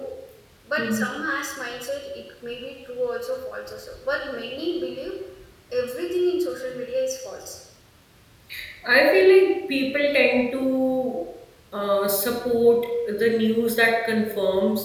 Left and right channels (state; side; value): identical; both; correlation 1.00